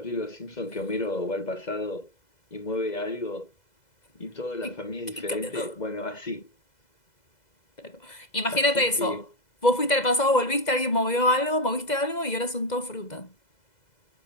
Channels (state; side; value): late; right; 2.0 ms